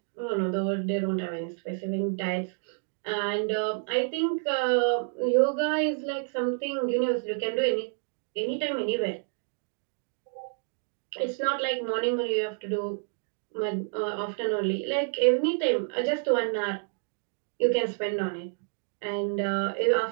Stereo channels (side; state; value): left; silent; 59 dB below the other